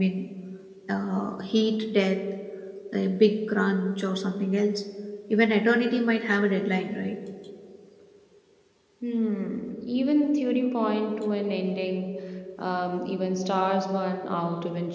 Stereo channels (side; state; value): both; identical; correlation 1.00